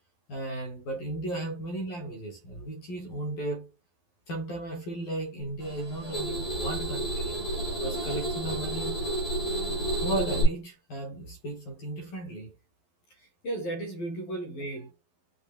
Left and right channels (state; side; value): late; right; 11 ms